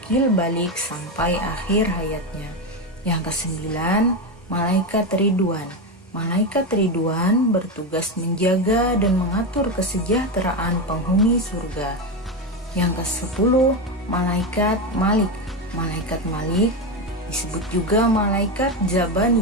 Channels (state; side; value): normal; both; correlation 0.13